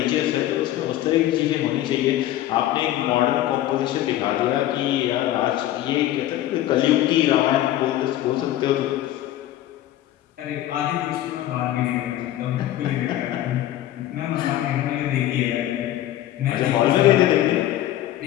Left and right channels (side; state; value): right; quieter; 13.6 dB